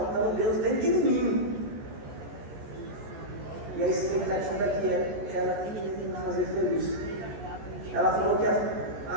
Deus dentro de mim. E a expectativa que era me fazer feliz. Ela falou que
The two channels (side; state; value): left; late; 14 ms